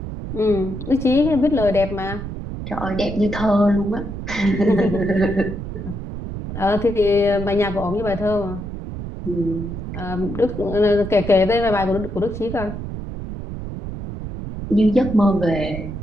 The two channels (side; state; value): right; noise; rumble, 8 dB below the sound